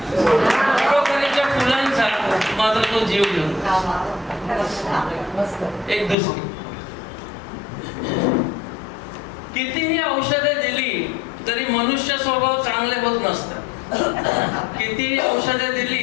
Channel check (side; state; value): right; drops out; at 6.2 s